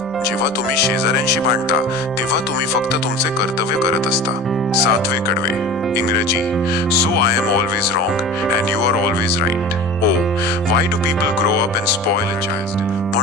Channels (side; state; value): both; normal; correlation 0.35